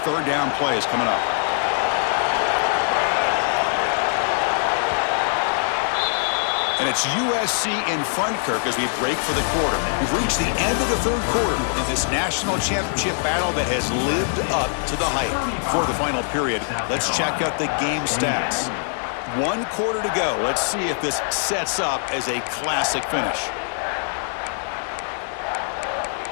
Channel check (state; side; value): silent; right; digital silence